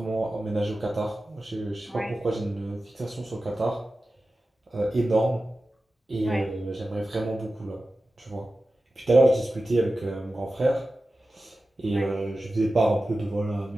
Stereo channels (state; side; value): normal; both; correlation 0.94